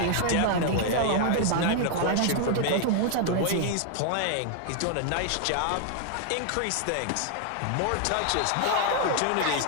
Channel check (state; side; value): different; both; correlation 0.00